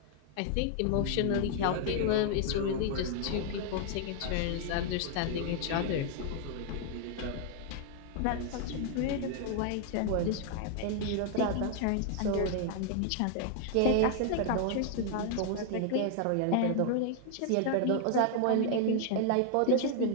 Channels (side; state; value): both; different; correlation 0.00